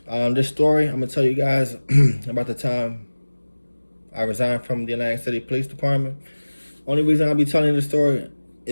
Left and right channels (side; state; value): both; inverted; correlation -1.00